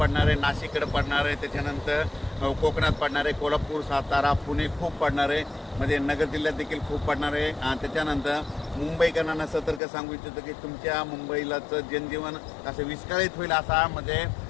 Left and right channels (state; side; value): drops out; right; at 9.8 s